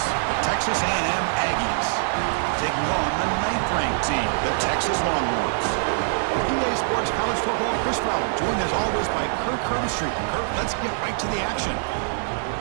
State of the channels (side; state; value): left; silent; digital silence